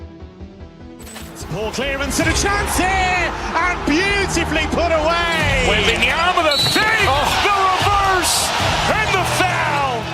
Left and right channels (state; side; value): identical; both; correlation 1.00